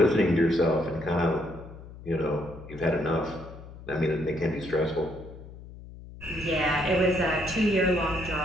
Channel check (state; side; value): noise; left; hum, 16 dB below the sound